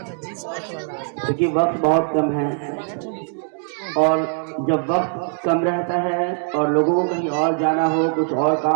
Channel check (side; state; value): left; silent; 56 dB below the other